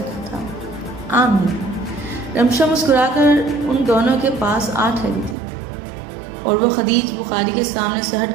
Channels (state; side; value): drops out; left; at 5.4 s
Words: رکھا تھا۔ آمین۔ رمشا مسکرا کر ان دونوں کے پاس آ ٹھہری تھی اور وہ خدیج بخاری کے سامنے سے